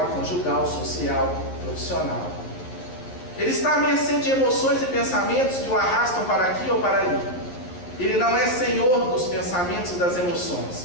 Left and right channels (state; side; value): late; right; 11 ms